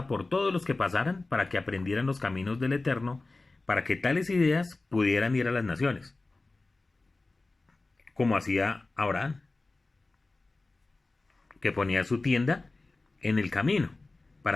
por todos los que pasaran para que aprendieran los caminos del Eterno, para que tales ideas pudieran ir a las naciones, como hacía Abraham, que ponía su tienda en el camino,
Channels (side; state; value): right; quieter; 3.3 dB